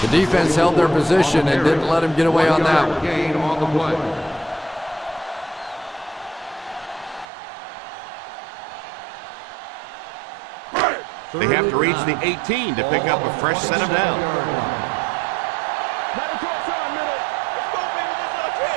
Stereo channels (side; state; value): left; drops out; at 7.2 s